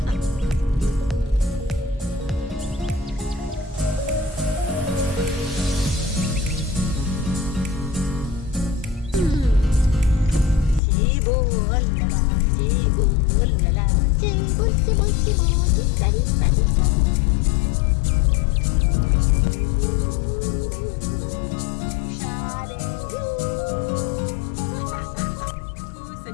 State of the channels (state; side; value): drops out; right; at 10.8 s